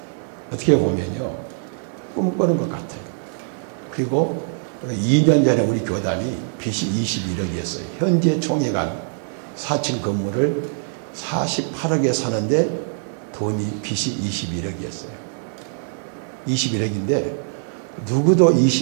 어떻게 보면요, 꿈꾸는 것 같아요. 그리고 2년 전에 우리 교단이 빚이 21억이었어요. 현재 총회가 4층 건물을 48억에 사는데 돈이 빚이 21억이었어요. 21억인데 누구도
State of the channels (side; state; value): left; silent; 58 dB below the other